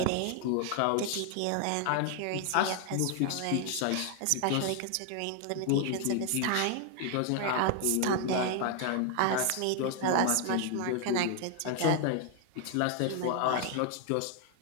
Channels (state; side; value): different; both; correlation 0.00